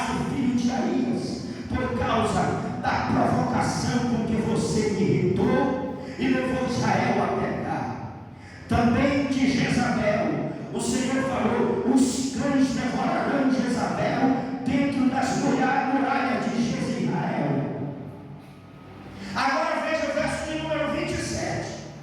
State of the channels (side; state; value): both; identical; correlation 1.00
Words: filho de Aías, por causa da provocação com que você me irritou e levou Israel a pecar. Também de Jezabel, o Senhor falou: os cães devorarão Jezabel dentro das muralhas de Jezreel. Agora veja o verso de número 27.